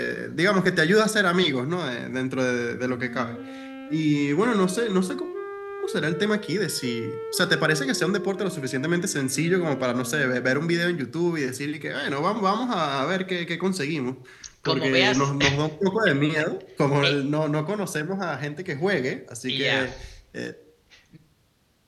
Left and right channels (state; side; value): identical; both; correlation 1.00